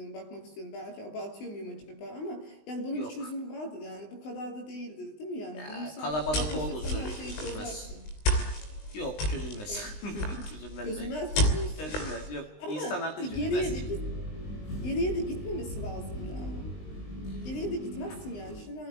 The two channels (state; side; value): late; right; 20 ms